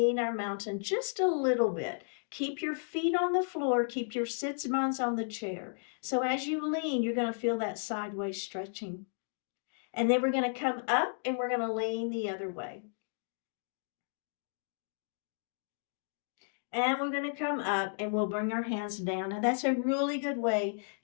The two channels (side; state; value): right; silent; digital silence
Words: our mountain just a little bit. Keep your feet on the floor. Keep your sits bones on the chair. So as you lean, you're going to feel that sideways stretching. And then we're going to come up and we're going to lean the other way. And we're going to come up and we'll bring our hands down. Now that's a really good way